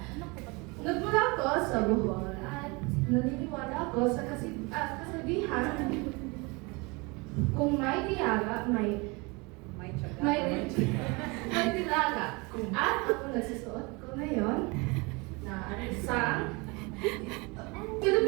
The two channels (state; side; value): quieter; left; 27.3 dB